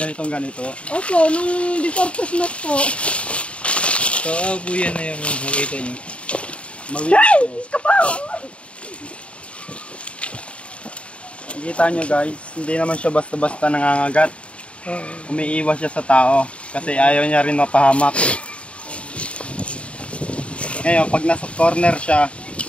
Ganito. Opo, nung before Christmas po. So, buyan na yung nakita nyo. Nakikita nyo guys, hindi naman siya basta-basta nangangagat. Umiiwas siya sa tao kasi ayaw niya rin mapahamak. Ngayon, pag nasa corner siya,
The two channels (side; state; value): right; late; 0.061 ms